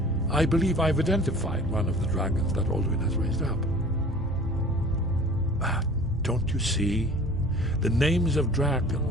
I believe I've identified one of the dragons that Alduin has raised up. Don't you see? The names of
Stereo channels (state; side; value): normal; both; correlation 0.45